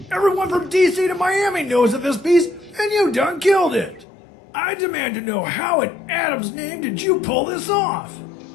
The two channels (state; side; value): drops out; right; at 4.0 s